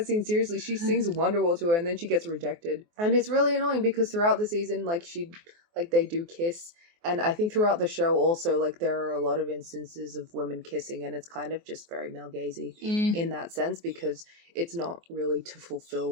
scene seriously. She sings Wonderwall to her, and then she gets rejected. And it's really annoying because throughout the season, like, they do kiss. And I think throughout the show also, like, there are a lot of instances of women kissing, and it's kind of just very male-gazy in that sense, because it's not really to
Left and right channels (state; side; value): late; left; 24 ms